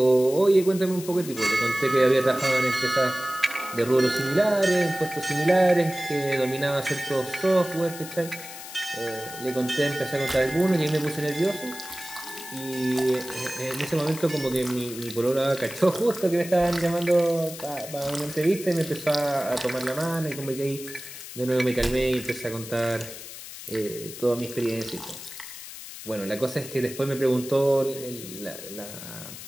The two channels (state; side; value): noise; left; hiss, 12 dB below the sound